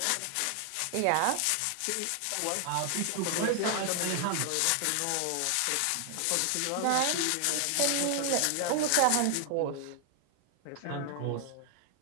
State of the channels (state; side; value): different; both; correlation 0.00